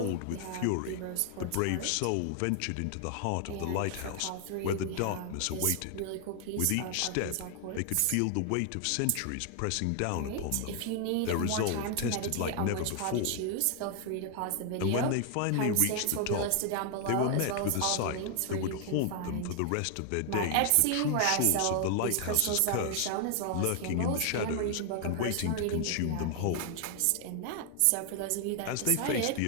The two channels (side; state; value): both; different; correlation 0.00